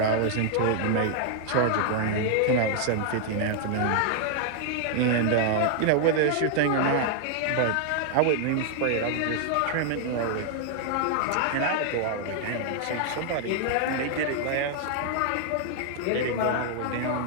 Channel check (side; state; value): both; different; correlation 0.00